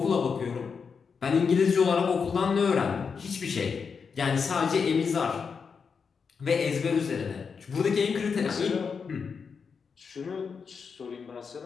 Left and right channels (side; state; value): right; quieter; 5.8 dB